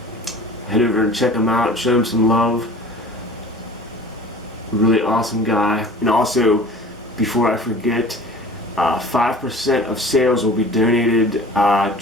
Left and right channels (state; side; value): normal; both; correlation 0.43